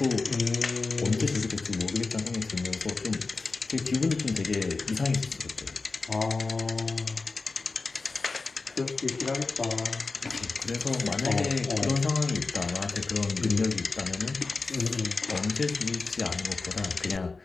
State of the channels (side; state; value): right; quieter; 3.9 dB